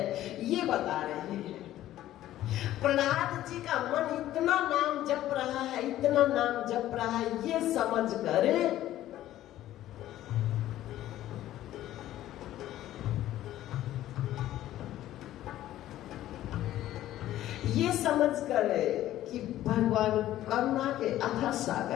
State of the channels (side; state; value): right; quieter; 13.7 dB